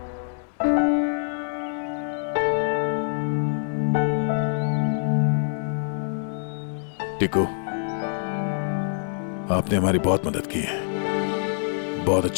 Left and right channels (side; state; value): right; silent; digital silence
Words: टिकू, आपने हमारी बहुत मदद की है। बहुत